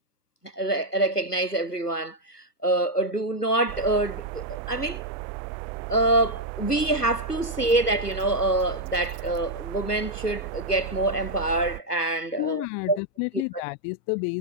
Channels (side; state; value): right; late; 1.3 ms